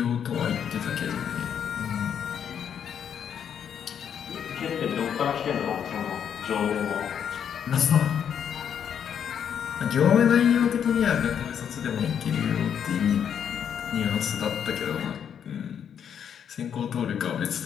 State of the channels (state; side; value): quieter; right; 8.3 dB